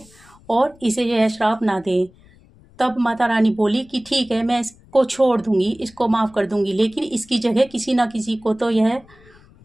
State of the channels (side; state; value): left; noise; rumble, 27 dB below the sound